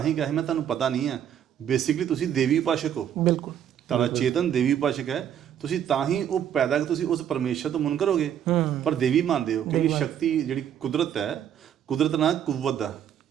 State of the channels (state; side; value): quieter; left; 9.6 dB